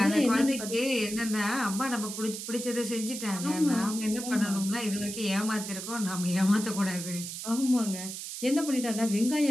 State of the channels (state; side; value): noise; right; hiss, 8 dB below the sound